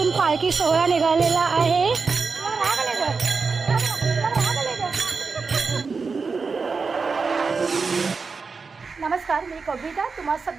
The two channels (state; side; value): quieter; left; 4.8 dB